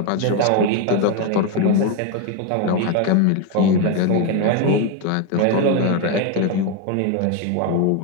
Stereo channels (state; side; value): different; both; correlation 0.02